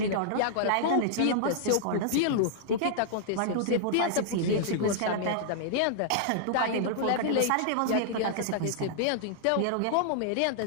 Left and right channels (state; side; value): different; both; correlation -0.01